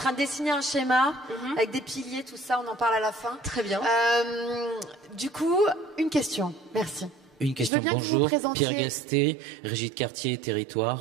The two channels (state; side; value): drops out; left; at 7.7 s